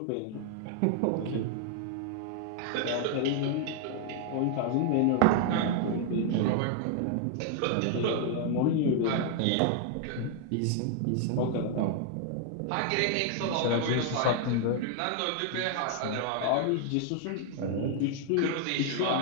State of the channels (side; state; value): both; different; correlation 0.00